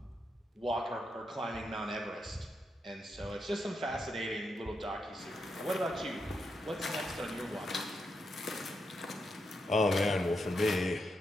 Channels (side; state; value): both; normal; correlation 0.83